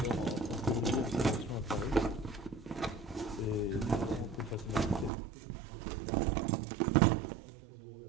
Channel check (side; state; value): left; drops out; at 5.1 s